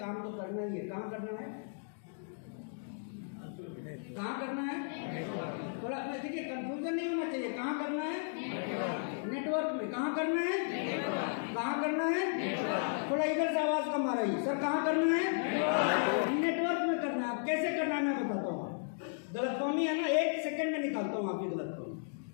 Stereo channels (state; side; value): silent; right; digital silence